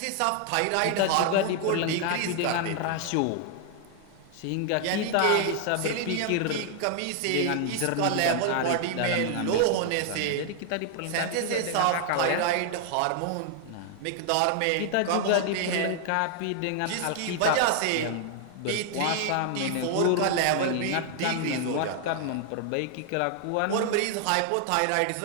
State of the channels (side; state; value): both; different; correlation 0.00